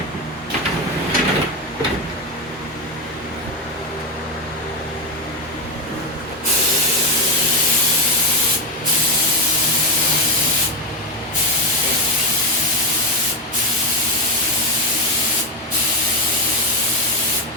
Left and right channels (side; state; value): both; normal; correlation 0.11